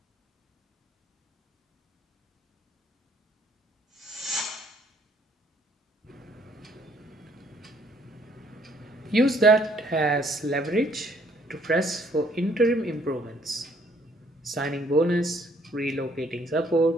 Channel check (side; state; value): both; normal; correlation 0.64